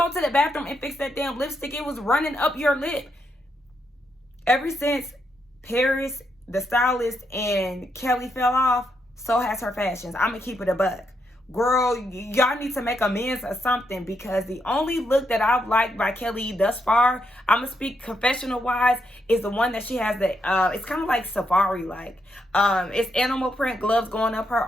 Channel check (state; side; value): normal; both; correlation 0.80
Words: to the bathroom and fix that damn lipstick? It was running up your lip. Ever since Paris, the stylist, and Kelly fell off, so has her fashions. I'm going to keep it a buck. Girl, y'all need to make amends or something, because the only look that I've liked by Kelly thus far, I'm going to speak confessional-wise, is the one that she has that, it's kind of like safari-like. It's animal print gloves going up her